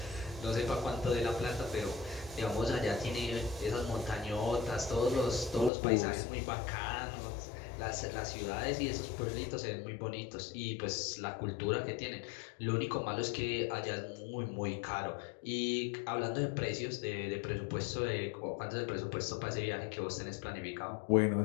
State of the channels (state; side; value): drops out; right; at 5.7 s